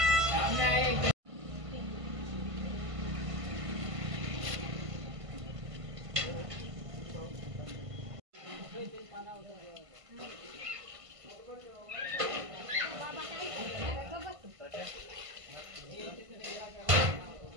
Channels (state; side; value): late; left; 1.5 ms